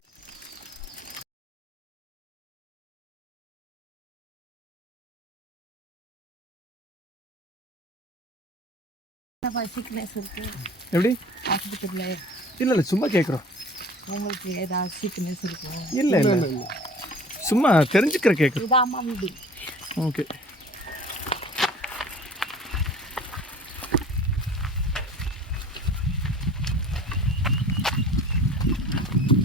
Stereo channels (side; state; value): both; normal; correlation 0.45